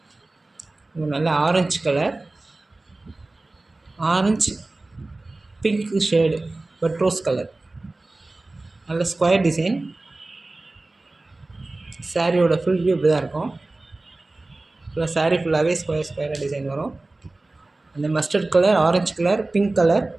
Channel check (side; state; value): left; quieter; 3.0 dB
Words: நல்ல orange colour, orange pink shade but rose colour, நல்ல ஸ்கொயர் டிசைன். சாரியோட ஃபுல் வியூ இப்படி தான் இருக்கும். ஃபுல்லாக சாரீ ஃபுல்லாகவே ஸ்கொயராக டிசைன் வரும். அந்த mustard colour, orange colour, pink colour,